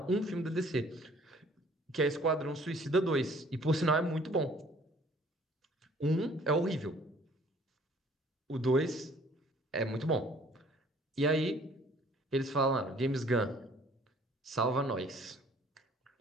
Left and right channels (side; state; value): both; normal; correlation 0.56